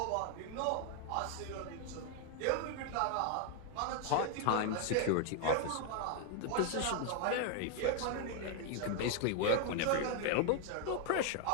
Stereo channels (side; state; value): both; different; correlation 0.00